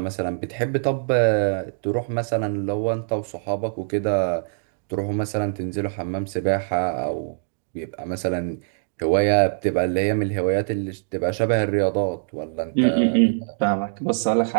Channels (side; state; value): left; silent; digital silence